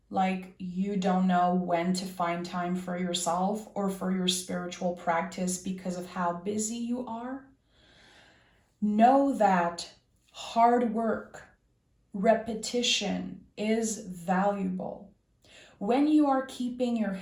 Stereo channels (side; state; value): both; identical; correlation 1.00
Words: like you don't know when to find time for yourself or for your spiritual practice because of how busy you are. Know that hard work, repetition is valuable. When you are keeping your